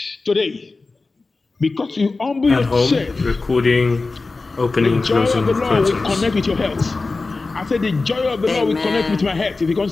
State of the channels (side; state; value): right; quieter; 3.7 dB